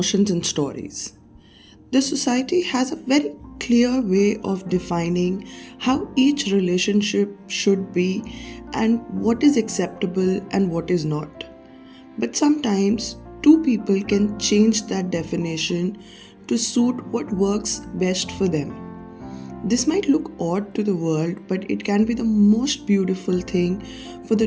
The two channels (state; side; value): identical; both; correlation 1.00